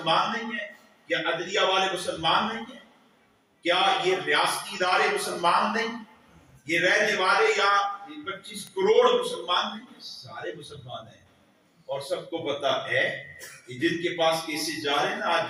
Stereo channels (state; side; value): identical; both; correlation 1.00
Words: نہیں ہیں؟ کیا عدلیہ والے مسلمان نہیں ہیں؟ کیا یہ ریاستی ادارے مسلمان نہیں؟ یہ رہنے والے یا 25 کروڑ مسلمان نہیں ہیں؟ سارے مسلمان ہیں، اور سب کو پتا ہے کہ جن کے پاس کیسز جا رہے ہیں نا آج